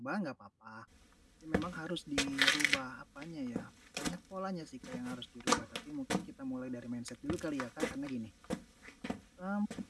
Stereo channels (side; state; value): both; identical; correlation 1.00